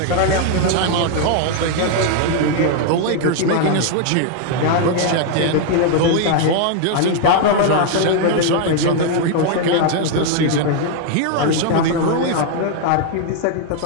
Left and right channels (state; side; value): different; both; correlation 0.00